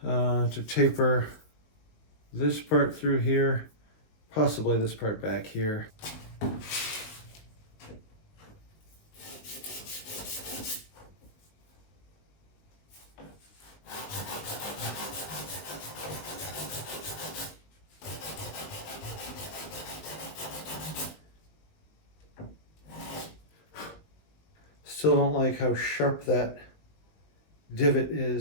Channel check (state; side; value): late; right; 19 ms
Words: to taper this part through here, possibly this part back here. Still don't like how sharp that divot